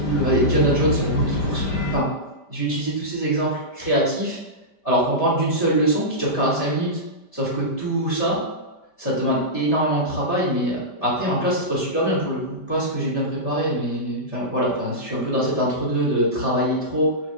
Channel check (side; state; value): right; late; 5.1 ms